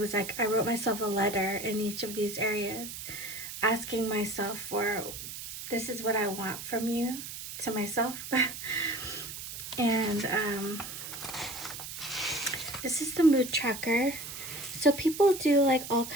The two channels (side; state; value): right; noise; hiss, 9 dB below the sound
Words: like, I wrote myself a letter in each of these areas, asking myself for, this is what I want from you, to myself. And This is the mood tracker. So people do like all